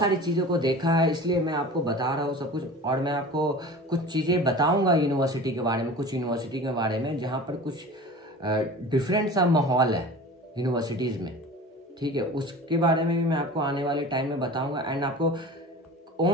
चीज़ों को देखा है, इसलिए मैं आपको बता रहा हूँ सब कुछ। और मैं आपको कुछ चीज़ें बताऊँगा यूनिवर्सिटी के बारे में, कुछ यूनिवर्सिटी के बारे में जहाँ पर कुछ डिफरेंट सा माहौल है यूनिवर्सिटीज़ में, ठीक है। उसके बारे में भी मैं आपको आने वाले टाइम में बताऊँगा। एंड आपको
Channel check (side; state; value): both; normal; correlation 0.37